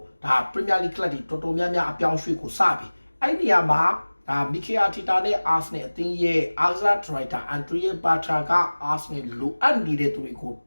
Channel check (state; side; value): inverted; both; correlation -1.00